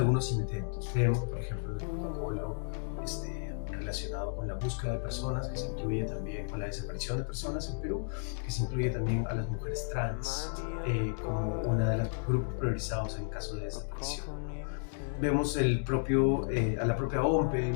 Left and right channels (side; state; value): right; silent; digital silence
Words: intentos. Vemos, por ejemplo, el protocolo relacionado con la búsqueda de personas, que se incluye también con la desaparición de personas en Perú, que se incluye también a las mujeres trans como uno de los grupos priorizados en caso de desaparición. Vemos a la propia OMPE